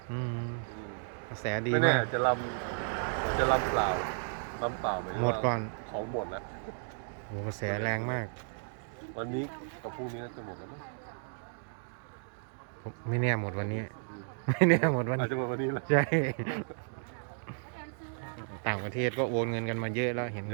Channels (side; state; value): left; silent; digital silence